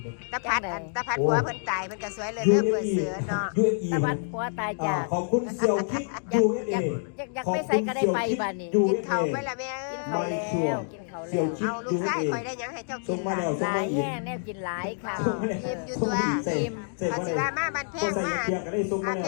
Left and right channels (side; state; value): right; silent; digital silence